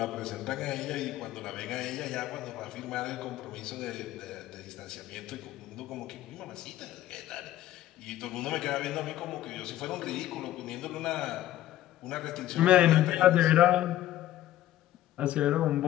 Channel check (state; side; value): quieter; right; 13.6 dB